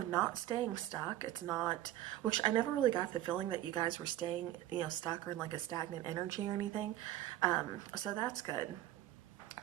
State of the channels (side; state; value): left; quieter; 13.7 dB